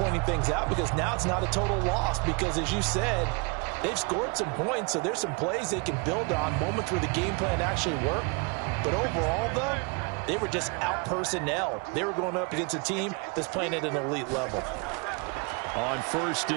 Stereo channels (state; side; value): quieter; left; 31.3 dB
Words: things out because now it's not a total loss because, as you said, they've scored some points, so there's some plays they can build on, moments where the game plan actually worked. But overall, though, they were just out personnel. They were going up against a team that's playing at an elite level. On 1st